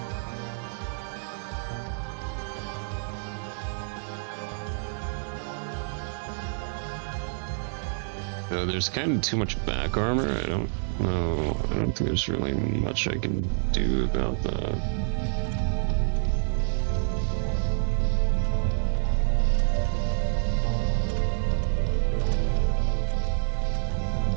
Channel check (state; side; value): silent; left; 60 dB below the other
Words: There's kind of too much back armor. I don't know. I don't think there's really much I can do about that.